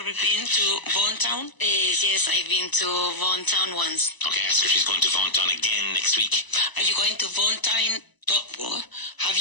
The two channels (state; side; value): late; right; 1.0 ms